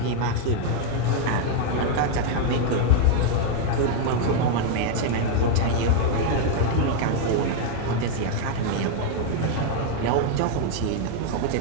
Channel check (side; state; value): both; different; correlation 0.00